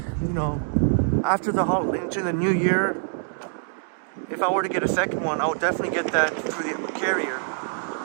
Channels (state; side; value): silent; left; digital silence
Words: you know, after the holiday into the new year, if I were to get a second one, I would definitely get that through the carrier.